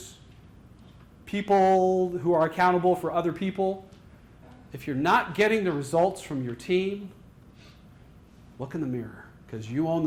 people who are accountable for other people, if you're not getting the results from your team, look in the mirror, because you own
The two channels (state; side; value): identical; both; correlation 1.00